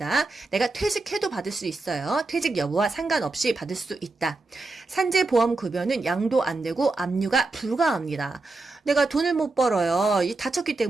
내가 퇴직해도 받을 수 있어요. 퇴직 여부와 상관없이 받을 수 있다. 산재보험급여는 양도 안 되고 압류가 불가합니다. 내가 돈을 못 벌어요. 다쳤기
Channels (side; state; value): left; quieter; 3.4 dB